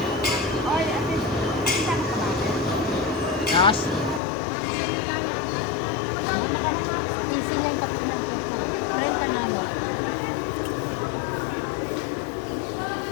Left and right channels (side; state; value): right; drops out; at 4.2 s